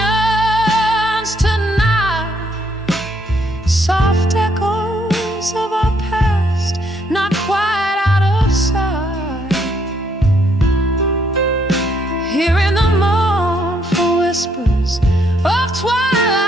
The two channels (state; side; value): normal; both; correlation 0.71